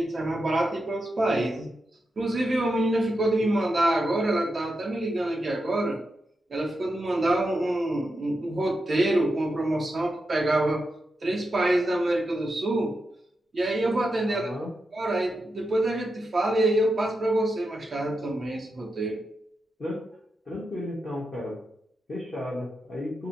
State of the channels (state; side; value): normal; both; correlation 0.88